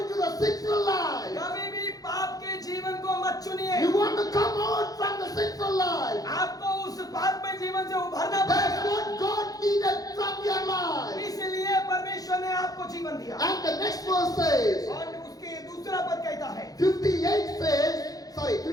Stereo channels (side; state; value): right; late; 0.18 ms